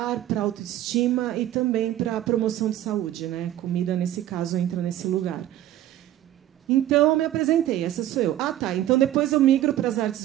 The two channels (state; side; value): quieter; left; 13.0 dB